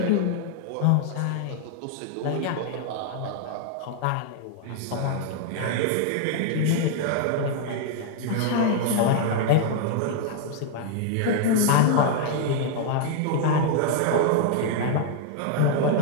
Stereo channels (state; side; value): different; both; correlation 0.00